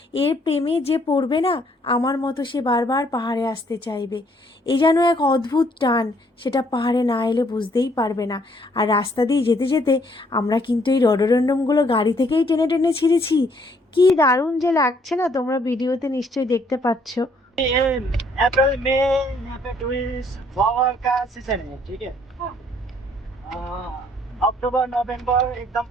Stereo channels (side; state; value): both; normal; correlation 0.66